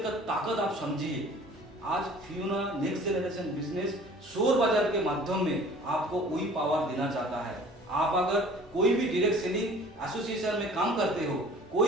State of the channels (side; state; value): both; normal; correlation 0.48